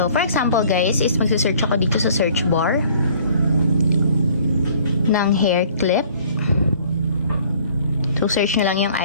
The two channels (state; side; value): inverted; both; correlation -0.55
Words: for example guys, is magsisearch ako dito sa search bar ng hair clip. So, search nyo lang yung